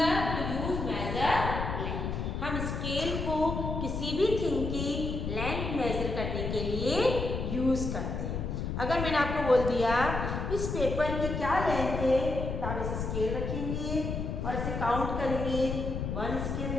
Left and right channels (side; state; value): left; noise; rumble, 3 dB below the sound